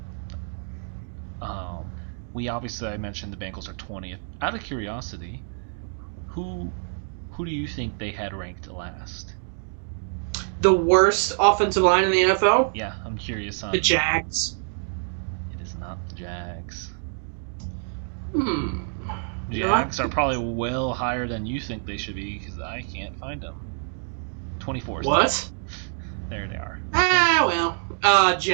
I mentioned the Bengals are 20th. Out of curiosity, who do you think they had ranked last? The worst offensive line in the NFL? Yeah, I'm curious on the Jags. It is not the Jags. Hmm. Jags are probably well higher than you think they should be because I can't find them. 24. What? There they are.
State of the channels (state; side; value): silent; left; 61 dB below the other